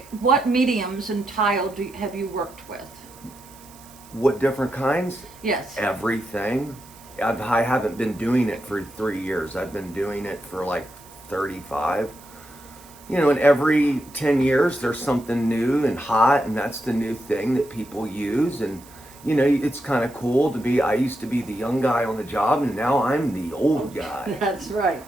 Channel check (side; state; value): right; noise; hiss, 23 dB below the sound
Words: What mediums and tile have you worked with? What different kinds? Yes. Everything. I haven't been doing it for 3 years. I've been doing it for like 35. You know, and every 10 years there's something new and hot, and that's the new thing that people use. And, you know, it's kind of cool to be, I used to be the young guy on the job, and now I'm the old guy. That's right.